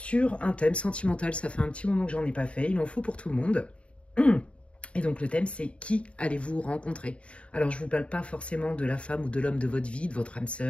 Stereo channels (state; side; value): late; right; 0.061 ms